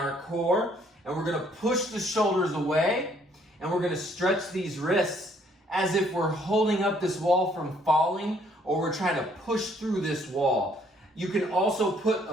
core. And we're gonna push the shoulders away, and we're gonna stretch these wrists as if we're holding up this wall from falling, or we're trying to push through this wall. You can also put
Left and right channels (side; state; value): both; normal; correlation 0.64